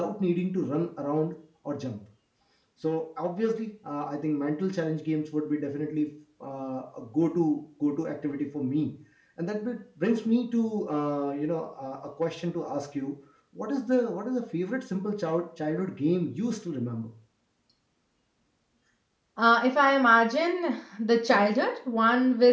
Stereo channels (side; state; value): both; identical; correlation 1.00